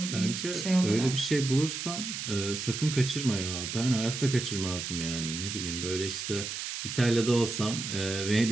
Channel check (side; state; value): right; noise; hiss, 5 dB below the sound